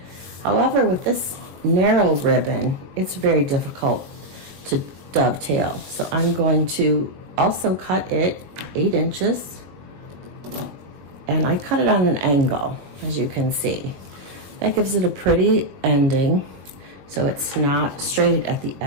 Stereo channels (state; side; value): late; left; 21 ms